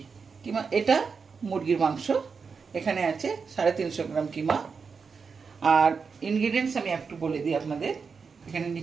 এটা মুরগির মাংস, এখানে আছে 350 গ্রাম কিমা। আর ইনগ্রিডিয়েন্টস আমি একটু বলে দিই আপনাদের। এখানে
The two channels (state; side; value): quieter; left; 5.4 dB